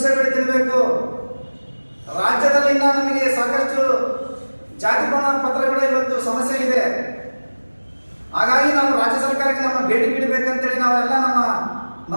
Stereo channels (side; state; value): both; inverted; correlation -1.00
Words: ಬೇಡಿ ತಿನ್ಬೇಕು? ರಾಜ್ಯದಲ್ಲಿ ನಮಗೆ ಸಾಕಷ್ಟು ಜಾತಿ ಪ್ರಮಾಣ ಪತ್ರಗಳ ಇವತ್ತು ಸಮಸ್ಯೆ ಇದೆ. ಹಾಗಾಗಿ ನಾವು ರಾಜ್ಯ ಸರ್ಕಾರಕ್ಕೆ ನಮ್ಮ ಬೇಡಿಕೆ ಇಡಬೇಕಂತೇಳಿ ನಾವೆಲ್ಲ ನಮ್ಮ